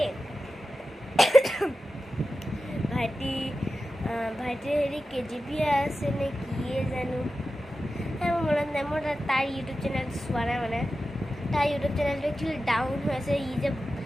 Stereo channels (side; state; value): both; normal; correlation 0.93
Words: ভাইটিৰ হেৰি KGP আছে নে কিয়ে জানো, মোৰ মনত নাই। মই তাৰ ইউটিউব চেনেল চোৱা নাই, মানে তাৰ ইউটিউব চেনেলটো একচুৱেলি ডাউন হৈ আছে। যে